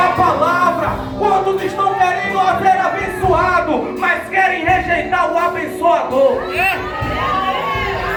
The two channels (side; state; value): both; identical; correlation 1.00